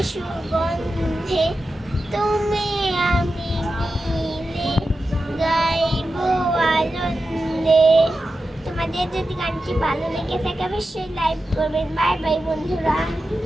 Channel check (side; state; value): both; normal; correlation 0.92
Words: সুগন্ধে তুমি আমি মিলে গাইব আনন্দে। তোমাদের যদি গানটি ভালো লেগে থাকে অবশ্যই লাইক করবেন। বাই বাই বন্ধুরা।